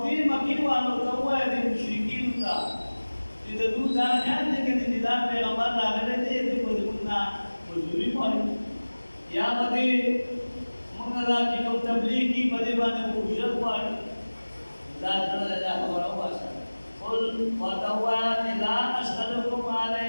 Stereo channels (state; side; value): inverted; both; correlation -1.00